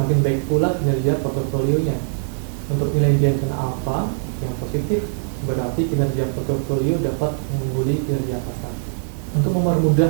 baik pula kinerja portofolionya. Untuk nilai Jensen Alpha yang positif, berarti kinerja portofolio dapat mengungguli kinerja pasar. Untuk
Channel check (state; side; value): silent; left; 62 dB below the other